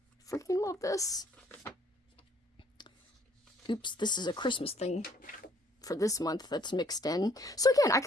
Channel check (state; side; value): normal; both; correlation 0.62